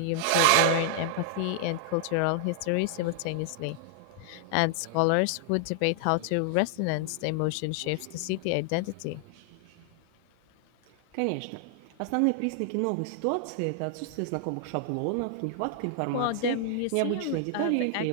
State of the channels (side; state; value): both; different; correlation -0.01